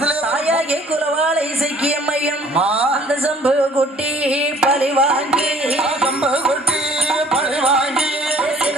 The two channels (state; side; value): normal; both; correlation 0.56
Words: தாயாகிய குலவாளை இசைக்கிய மையம் அந்த செம்புக்குட்டி பலி வாங்கி